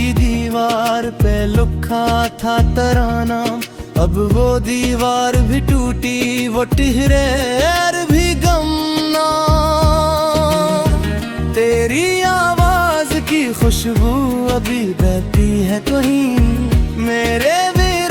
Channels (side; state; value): both; identical; correlation 1.00